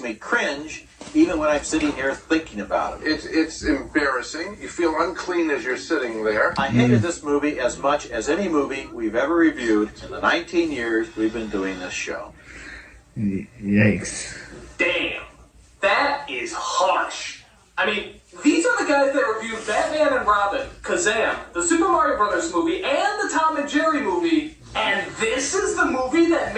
cringe even when I'm sitting here thinking about it. It's embarrassing. You feel unclean as you're sitting there. I hated this movie as much as any movie we've ever reviewed in the 19 years we've been doing this show. Yikes. Damn. That is harsh. I mean, these are the guys that reviewed Batman and Robin, Kazam, the Super Mario Brothers movie, and the Tom and Jerry movie, and this is the movie that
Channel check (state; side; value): identical; both; correlation 1.00